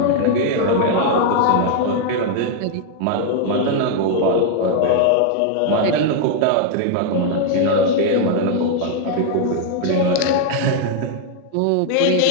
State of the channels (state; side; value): different; both; correlation 0.00